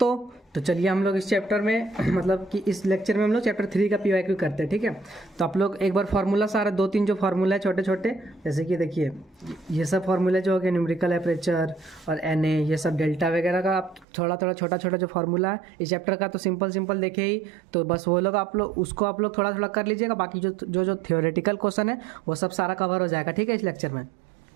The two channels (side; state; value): left; drops out; at 14.1 s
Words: तो चलिए हम लोग इस चैप्टर में मतलब कि इस लेक्चर में हम लोग चैप्टर 3 का पीवाईक्यू करते हैं। ठीक है, तो आप लोग एक बार फार्मूला सारा दो तीन जो फार्मूला है छोटे छोटे, जैसे कि देखिए ये सब फार्मूला जो हो गया न्यूमेरिकल एपरेचर और एन ए, ये सब डेल्टा वगैरह का आप थोड़ा थोड़ा छोटा छोटा जो फार्मूला है इस चैप्टर का, तो सिंपल सिंपल देखे ही, तो बस वो लोग आप लोग उसको आप लोग थोड़ा थोड़ा कर लीजिएगा। बाकी जो जो जो थियोरेटिकल क्वेश्चन है वो सब सारा कवर हो जाएगा। ठीक है, इस लेक्चर में।